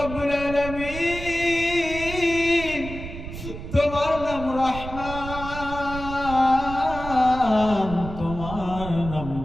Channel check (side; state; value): right; noise; rumble, 10 dB below the sound